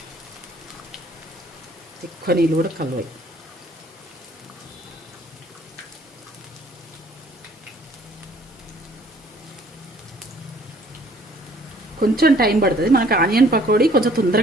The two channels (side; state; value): both; normal; correlation 0.58